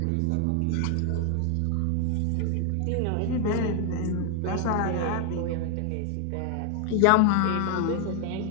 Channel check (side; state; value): both; different; correlation 0.00